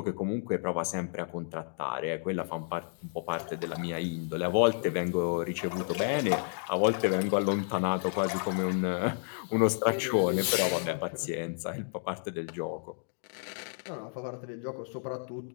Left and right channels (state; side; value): silent; right; 57 dB below the other